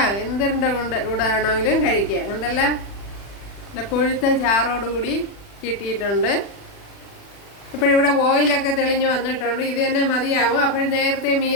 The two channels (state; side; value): late; right; 40 ms